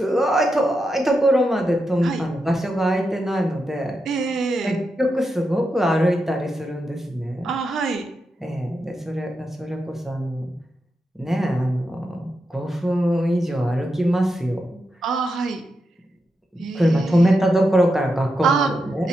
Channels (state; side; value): normal; both; correlation 0.87